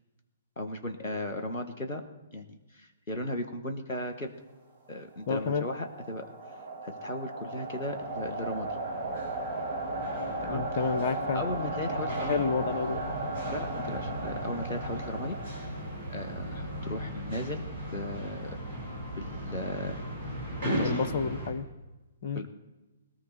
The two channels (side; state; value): both; inverted; correlation -0.49